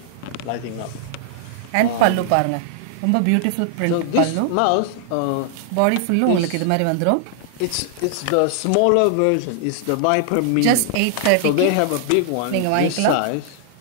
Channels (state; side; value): different; both; correlation 0.00